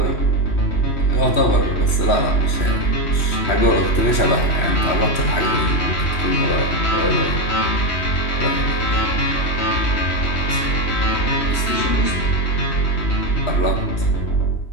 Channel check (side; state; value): right; late; 3.1 ms